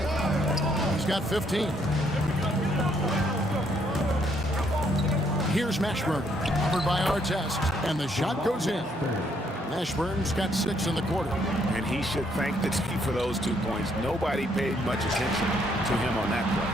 He's got 15. Here's Mashburn, covered by Artest, and the shot goes in. Mashburn's got 6 in the quarter. And he should thank the team for those 2 points. Nobody paid much attention to him on that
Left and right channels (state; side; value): normal; both; correlation 0.70